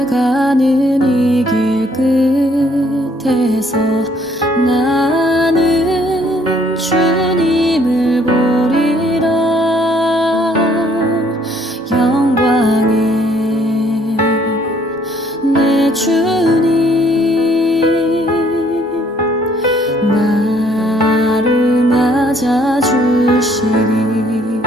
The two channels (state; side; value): normal; both; correlation 0.63